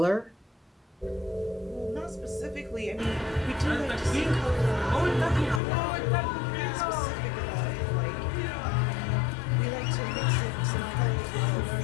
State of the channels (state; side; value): drops out; right; at 5.6 s